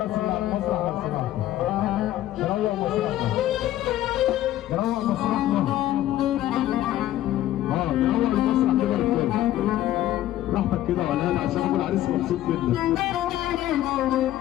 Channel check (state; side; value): quieter; right; 13.7 dB